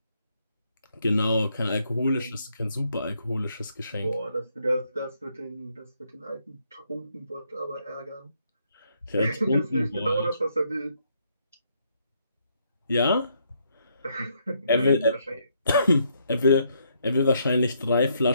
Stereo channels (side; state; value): both; inverted; correlation -0.73